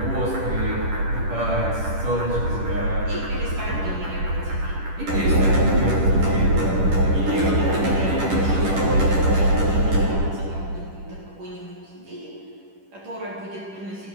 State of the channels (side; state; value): left; late; 10 ms